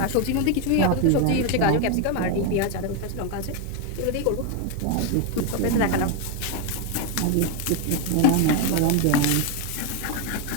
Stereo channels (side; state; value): both; different; correlation 0.01